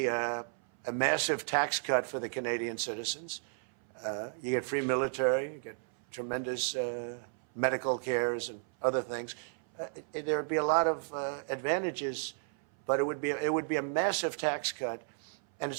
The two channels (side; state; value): left; silent; 56 dB below the other